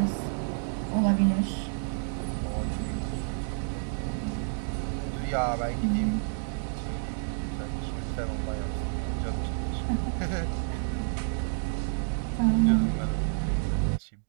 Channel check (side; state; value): left; silent; digital silence